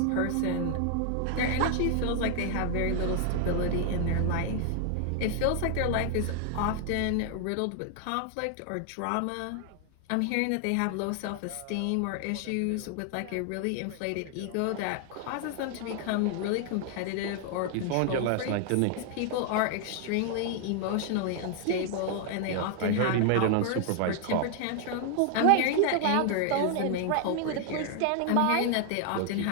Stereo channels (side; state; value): both; different; correlation 0.00